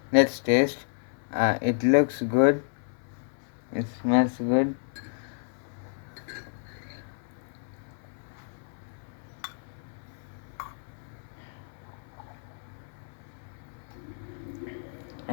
Let's taste. It looks good. It smells good.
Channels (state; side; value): silent; right; 58 dB below the other